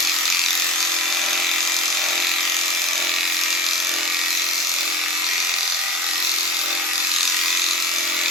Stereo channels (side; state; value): both; normal; correlation 0.34